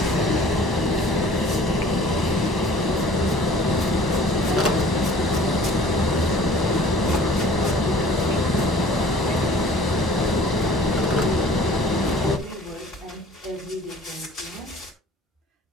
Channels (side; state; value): both; normal; correlation 0.49